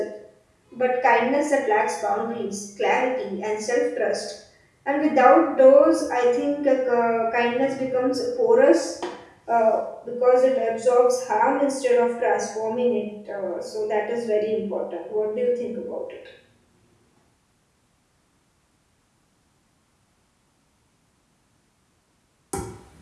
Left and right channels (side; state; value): both; identical; correlation 1.00